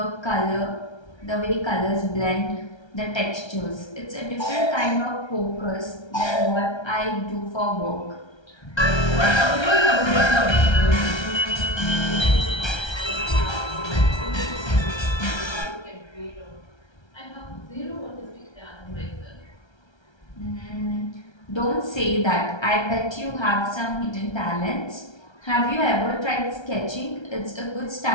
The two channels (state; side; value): late; right; 1.3 ms